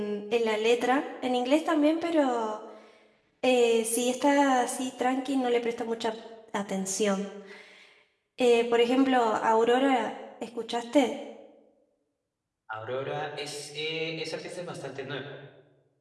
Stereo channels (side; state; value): both; identical; correlation 1.00